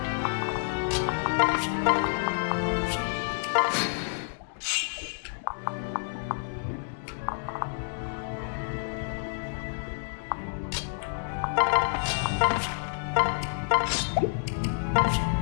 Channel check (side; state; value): right; silent; digital silence